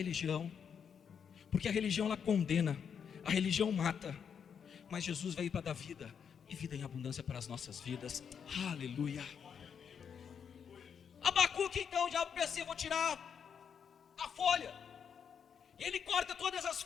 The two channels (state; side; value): quieter; right; 7.3 dB